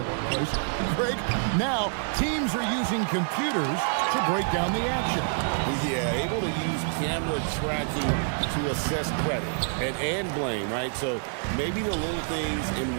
workplace. Greg, now teams are using computers to break down the action. Yeah, able to use camera tracking to assess credit and blame, right? So maybe the little things in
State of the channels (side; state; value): left; silent; digital silence